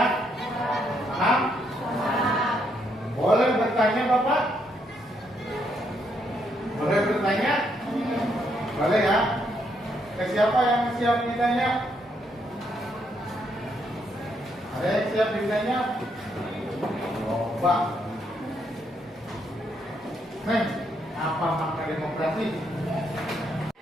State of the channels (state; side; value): normal; both; correlation 0.75